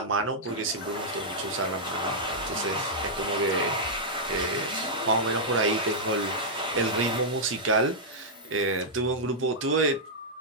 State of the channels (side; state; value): both; normal; correlation -0.08